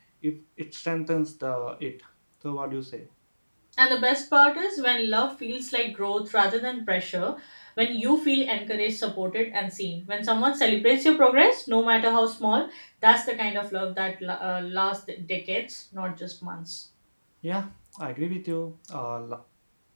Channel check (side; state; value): both; inverted; correlation -1.00